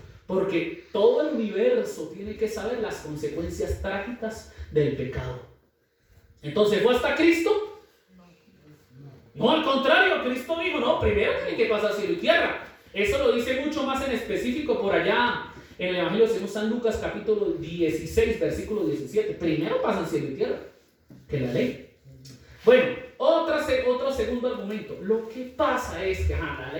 Porque todo el universo tiene que saber las consecuencias trágicas del pecado. Entonces, ¿fue hasta Cristo? No, al contrario, Cristo dijo, no, primero tiene que pasar cielo y tierra. Eso lo dice mucho más en específico por allá en el Evangelio de San Lucas capítulo 16, versículo 17. Primero pasan cielo y tierra que la ley. Bueno, otro segundo argumento. Lo que pasa es que la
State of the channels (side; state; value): both; identical; correlation 1.00